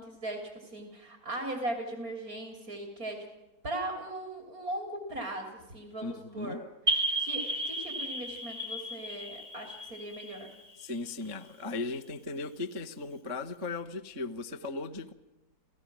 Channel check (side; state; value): left; late; 3.7 ms